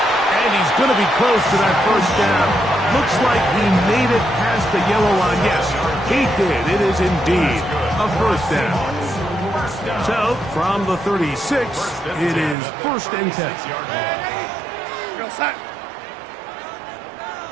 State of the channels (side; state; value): left; drops out; at 12.6 s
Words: And he's going to be close to that first down. Looks like he made it past the yellow line. Yes, he did. It is indeed a first down. So, from the 36, it is 1st and 10.